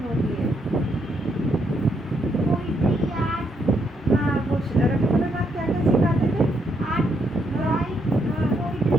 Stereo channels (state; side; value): normal; both; correlation 0.76